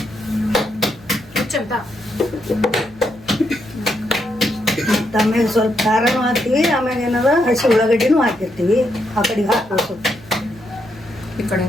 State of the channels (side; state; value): right; noise; hum, 23 dB below the sound